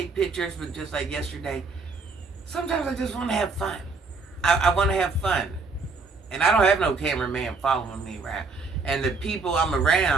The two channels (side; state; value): left; quieter; 4.2 dB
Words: pictures, but just like yesterday, sometimes I just want to have fun. I want to have fun. And I don't have no cameraman following me around. And the people I'm